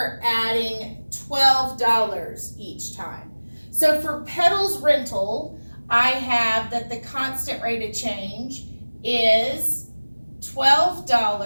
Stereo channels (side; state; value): both; inverted; correlation -1.00